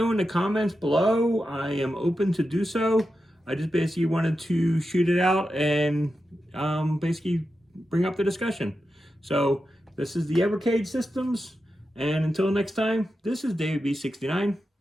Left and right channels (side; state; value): both; normal; correlation 0.90